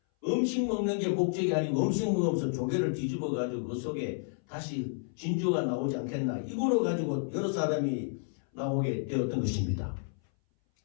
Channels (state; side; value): silent; right; 57 dB below the other